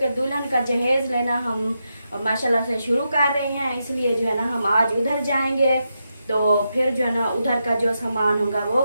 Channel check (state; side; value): inverted; both; correlation -0.85